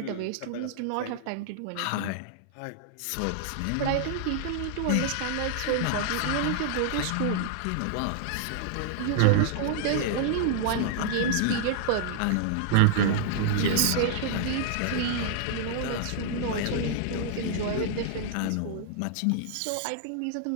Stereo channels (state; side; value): different; both; correlation -0.01